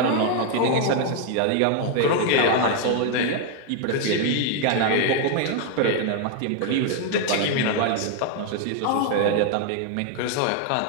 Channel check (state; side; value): different; both; correlation 0.00